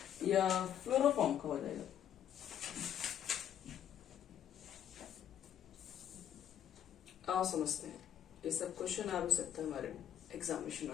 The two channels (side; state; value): right; quieter; 10.0 dB